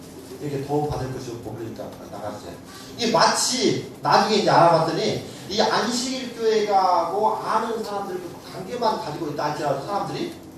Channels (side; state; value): both; identical; correlation 1.00